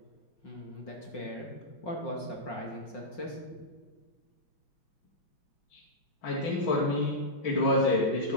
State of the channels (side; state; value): right; late; 5.6 ms